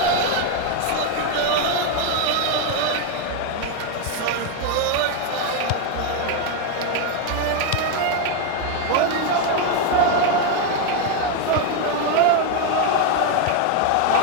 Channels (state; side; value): different; both; correlation 0.01